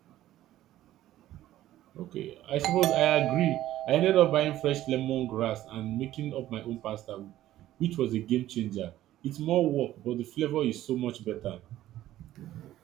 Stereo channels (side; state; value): left; quieter; 13.9 dB